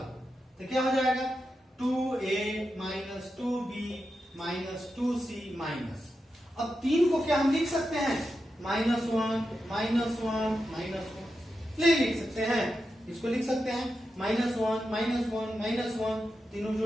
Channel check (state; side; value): normal; both; correlation 0.89